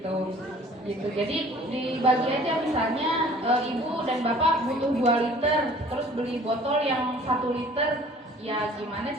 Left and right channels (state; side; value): normal; both; correlation 0.51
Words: Jadi dibagi aja misalnya ibu dan bapak butuh 2 liter terus beli botol yang 1 liter, ya gimana